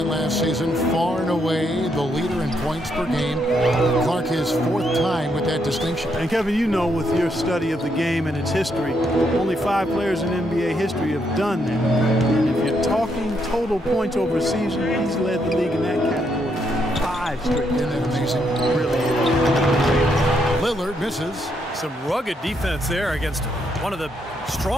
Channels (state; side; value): normal; both; correlation 0.77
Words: last season, far and away the leader in points per game. Clark his 4th time with that distinction. And Kevin, you know, with your study of the game and its history, only 5 players in NBA history have done that. And if you're talking total points over a season, he's led the league in that category. 5 straight. Isn't that amazing? Really is. Lillard misses. Some rugged defense there against one of the